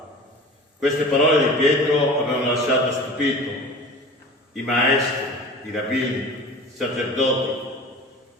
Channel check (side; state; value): both; normal; correlation 0.38